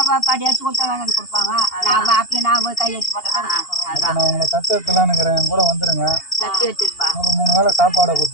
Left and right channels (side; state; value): right; late; 2.8 ms